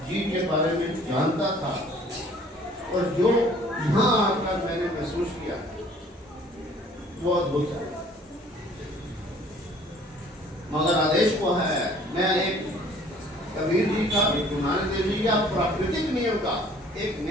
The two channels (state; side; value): normal; both; correlation 0.54